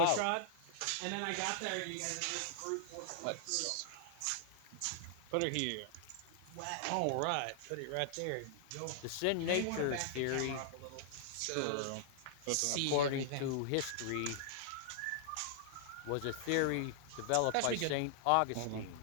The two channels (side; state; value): both; different; correlation -0.01